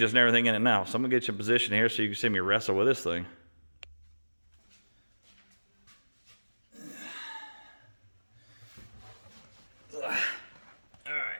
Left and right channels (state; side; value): inverted; both; correlation -1.00